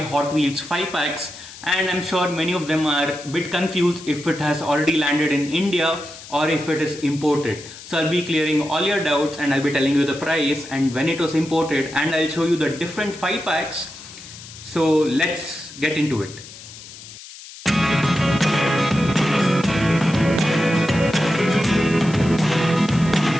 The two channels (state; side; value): noise; left; hiss, 16 dB below the sound